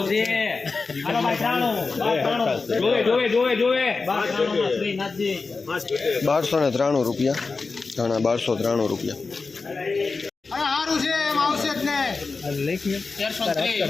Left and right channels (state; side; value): quieter; right; 4.2 dB